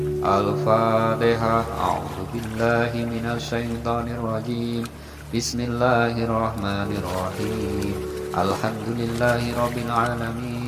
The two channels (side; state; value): both; identical; correlation 1.00